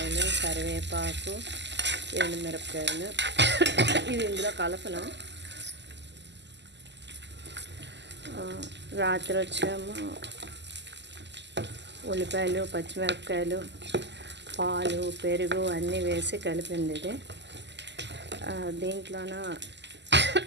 కరివేపాకు, ఎండుమిరపకాయలు. ఇది ఇందులో కలపను. రాత్రి వచ్చేమో ఉల్లిపాయలు, పచ్చిమిరపకాయలు, పాలు, పెరుగు అన్నీ వేసి కలిపింది ఇది. దీంట్లోన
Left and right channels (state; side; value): late; left; 0.51 ms